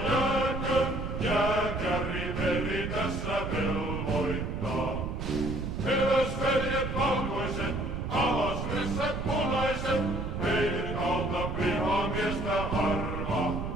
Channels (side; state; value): right; noise; rumble, 4 dB below the sound